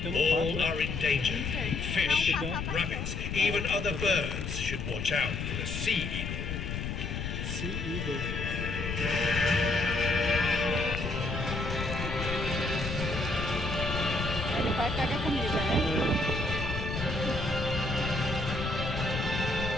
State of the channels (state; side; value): noise; left; rumble, 4 dB below the sound